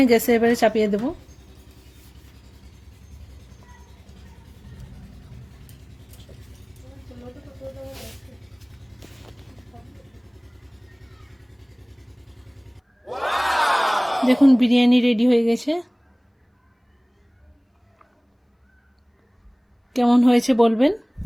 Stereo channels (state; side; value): identical; both; correlation 1.00